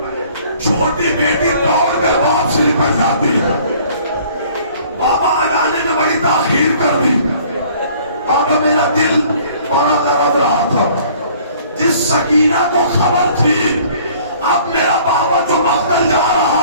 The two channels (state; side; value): inverted; both; correlation -0.55